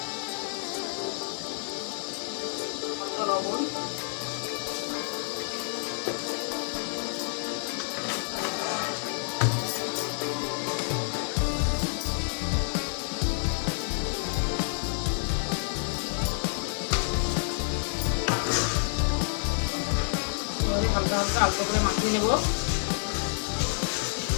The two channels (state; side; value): silent; right; digital silence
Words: হালকা করে মাখিয়ে নেব।